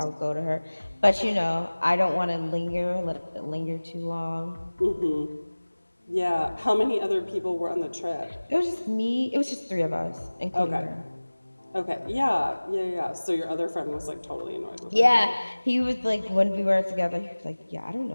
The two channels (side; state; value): both; inverted; correlation -1.00